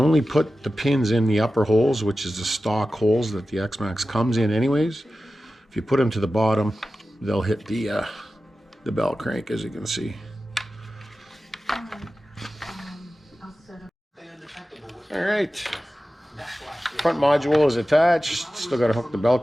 put the pins in the upper holes, which is the stock holes that the X-Maxx comes in anyways. If you put them to the bottom, they'll hit the bell crank, as you can see. All right, front module is attached. Still got to hook the bell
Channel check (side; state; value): both; normal; correlation 0.94